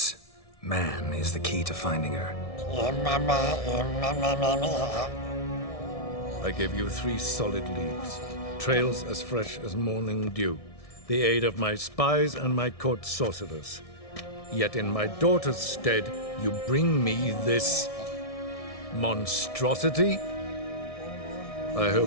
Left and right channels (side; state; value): right; late; 1.6 ms